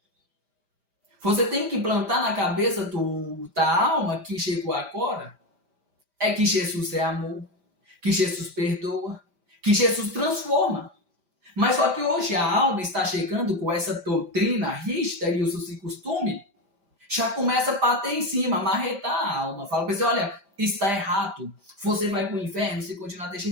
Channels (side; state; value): left; late; 5.0 ms